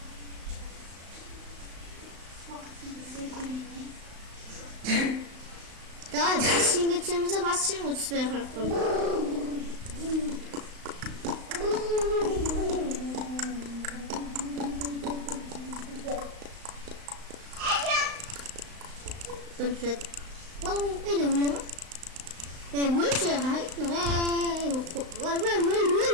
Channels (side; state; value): left; late; 35 ms